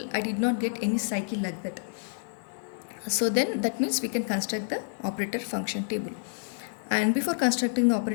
I did not get any cycle like that. So then that means we can construct the operator function table. And before constructing the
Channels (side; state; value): right; silent; digital silence